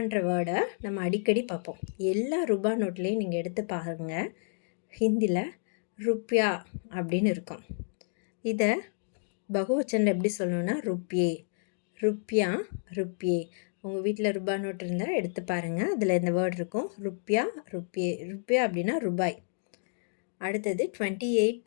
வேர்டை நம்ம அடிக்கடி பார்ப்போம். எல்லா ரூபா நோட்லேயும் நீங்கள் எடுத்து பாருங்கள், ஹிந்தியில் ருப்பியா அப்படின்னு இருக்கும். இதை பகுவச்சனில் எப்படி சொல்லணும்னா ருப்பியா. உங்கள் வீட்டில் ரூபா நோட்டு இருந்தால் எடுத்து பாருங்கள், அதில் இந்த வேர்டு இருக்கும். ருப்பியா அப்படின்னா ரூபாய். அடுத்தது 28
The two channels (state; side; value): silent; right; digital silence